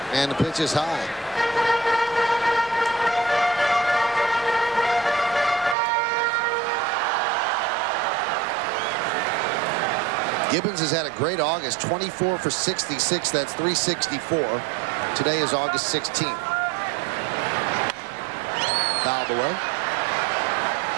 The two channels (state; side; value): drops out; left; at 5.8 s